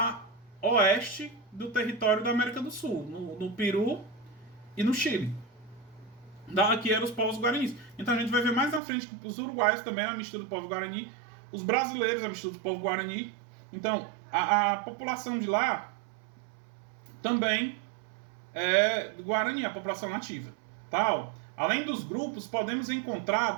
oeste do território da América do Sul, no Peru e no Chile. Aqui eram os povos guaranis. Então a gente vai ver mais na frente que os uruguaios também eram a mistura do povo guarani, os brasileiros a mistura do povo guarani. Então, a população de lá também é do Guarani, a população nativa. Tal. Além dos grupos, podemos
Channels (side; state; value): left; drops out; at 8.8 s